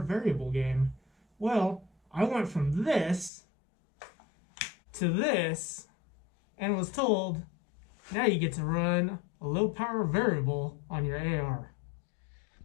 variable game? Well, I went from this to this and was told, now you get to run a low power variable on your AR.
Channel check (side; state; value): right; drops out; at 3.3 s